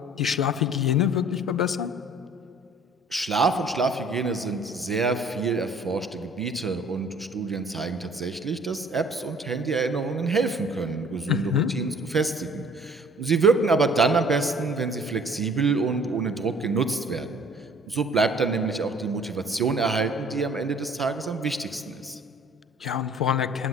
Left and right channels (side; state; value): both; normal; correlation 0.53